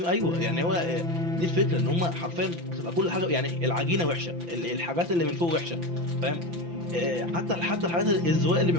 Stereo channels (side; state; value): left; late; 5.9 ms